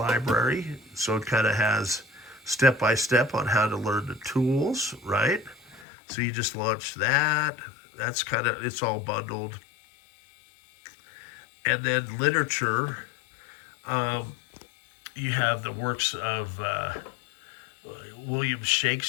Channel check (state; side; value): drops out; right; at 5.9 s